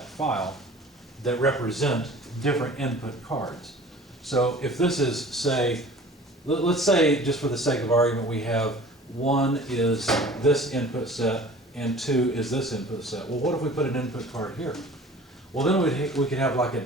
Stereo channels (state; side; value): normal; both; correlation 0.45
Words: file that represent different input cards. So if this is, say, let's say, just for the sake of argument, we have 1 is this input set and 2 is this input set. Well, what if we put an input card here? Well, then we could have like an